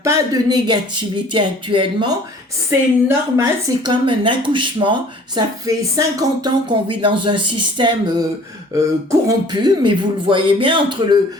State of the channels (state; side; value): normal; both; correlation 0.51